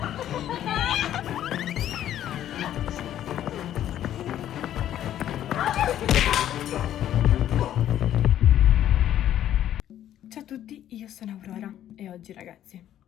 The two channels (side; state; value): right; quieter; 11.5 dB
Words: Ciao a tutti, io sono Aurora e oggi ragazzi